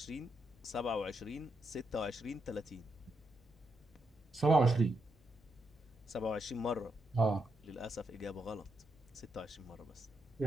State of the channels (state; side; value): normal; both; correlation 0.81